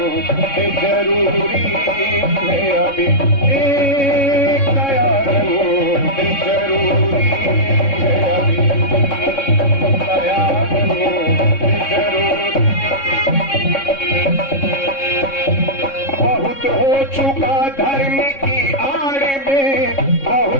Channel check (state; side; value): late; right; 3.6 ms